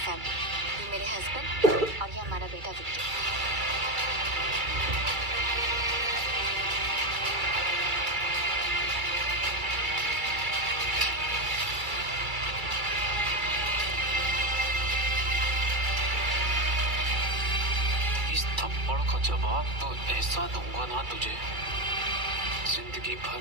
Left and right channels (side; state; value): left; late; 2.3 ms